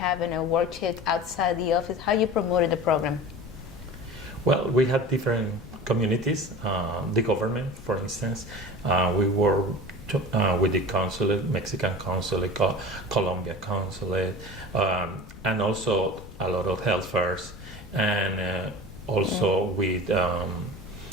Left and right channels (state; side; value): noise; left; rumble, 16 dB below the sound